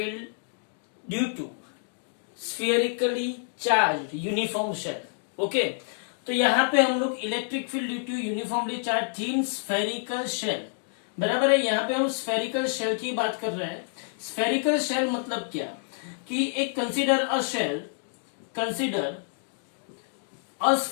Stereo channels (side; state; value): right; silent; digital silence